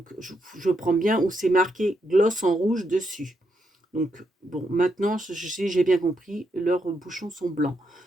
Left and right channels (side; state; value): both; normal; correlation 0.80